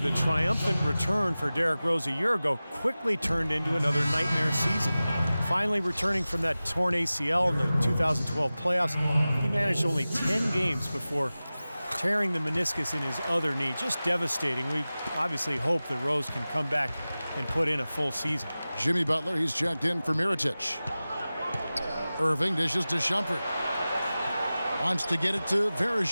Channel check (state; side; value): inverted; both; correlation -0.97